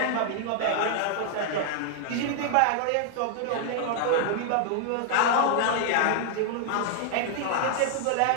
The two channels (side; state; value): both; different; correlation 0.00